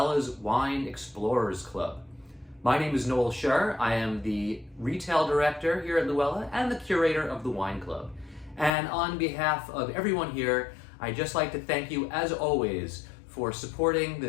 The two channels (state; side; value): drops out; right; at 8.7 s